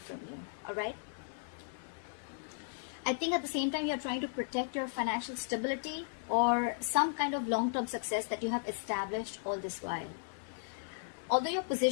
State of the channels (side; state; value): right; silent; 54 dB below the other